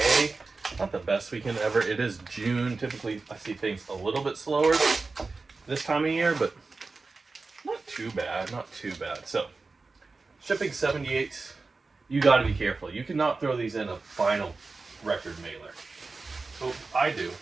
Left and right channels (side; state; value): left; quieter; 3.9 dB